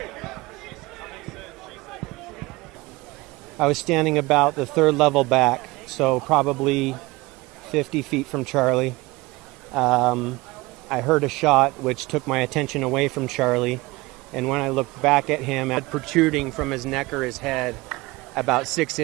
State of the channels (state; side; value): quieter; left; 21.8 dB